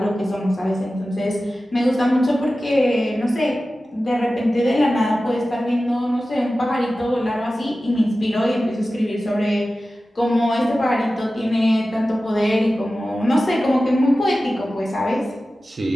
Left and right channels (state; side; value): normal; both; correlation 0.95